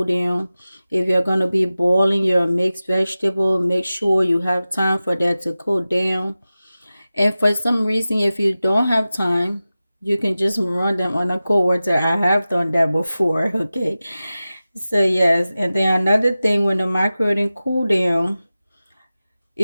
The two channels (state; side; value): inverted; both; correlation -0.95